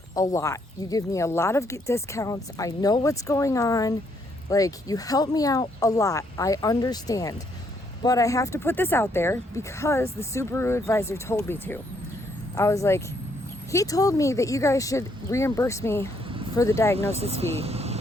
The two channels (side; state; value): both; normal; correlation 0.72